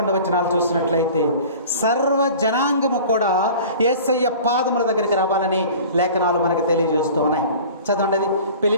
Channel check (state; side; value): inverted; both; correlation -0.42